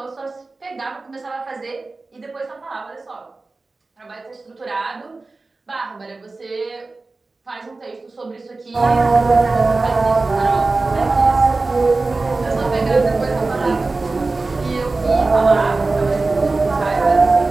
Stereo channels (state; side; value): quieter; left; 3.5 dB